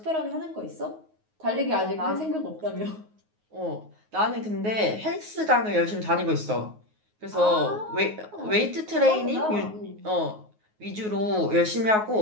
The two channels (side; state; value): left; late; 9.4 ms